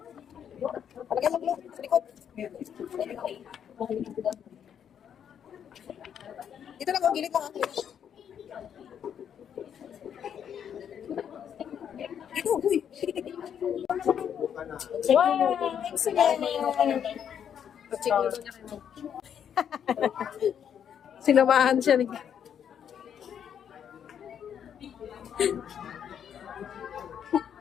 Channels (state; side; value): quieter; right; 8.6 dB